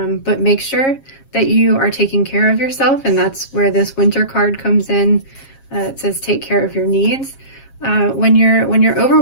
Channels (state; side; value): late; right; 7.4 ms